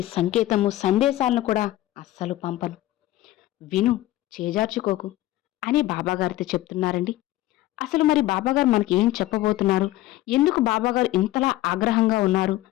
సంకేతము సందేశాలను కూడా అస్సలు పంపను. విను, చేజార్చుకోకు అని బాబాగారితో చెప్తున్నారండి. అసలు మరి బాబాగారు మనకి ఏం చెప్పబోతున్నారు? ఎందుకు బాబాగారు ఇంతలా ఆగ్రహంగా ఉన్నారు?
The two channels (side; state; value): right; quieter; 15.9 dB